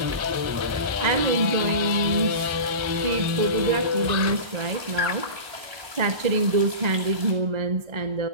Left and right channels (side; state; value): left; late; 1.3 ms